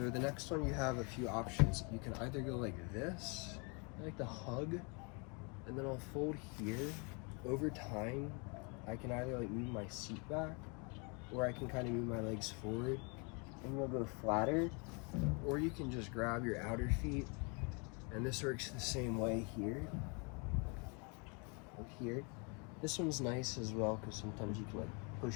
next one, you have a few options. You can either go like this, I like to hug, and then I'll fold here. Over time, I can either like move my seat back, or I can kind of move my legs forward, and we'll go flatter. Or you can just grab your outer feet, and this works the same way here. Up here. This one's nice as well, because sometimes you can like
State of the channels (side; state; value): right; quieter; 33.6 dB